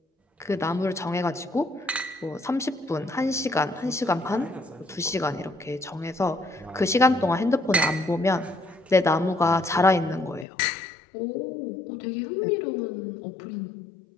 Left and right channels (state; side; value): drops out; right; at 10.5 s